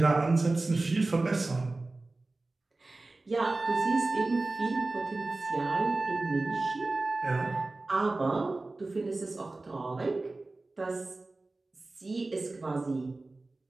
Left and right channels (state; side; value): quieter; left; 3.2 dB